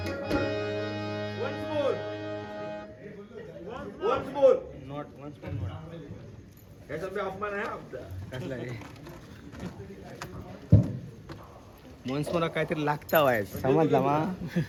Once more. Not once more. याचा बी अपमान आहे आमचा. कसला रे मनस मला काहीतरी लागता वाय समजला मा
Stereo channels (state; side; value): identical; both; correlation 1.00